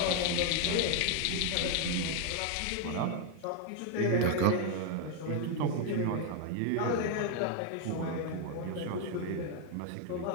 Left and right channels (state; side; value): different; both; correlation 0.00